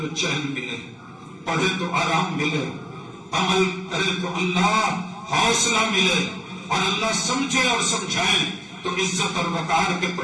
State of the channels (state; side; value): identical; both; correlation 1.00